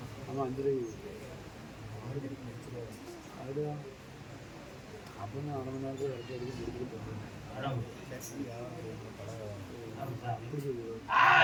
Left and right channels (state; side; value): identical; both; correlation 1.00